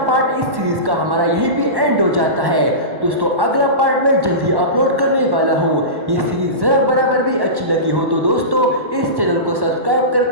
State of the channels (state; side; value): late; left; 1.1 ms